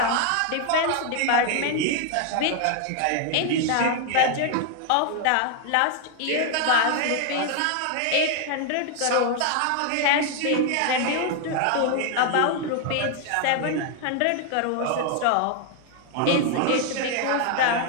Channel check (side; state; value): both; different; correlation 0.00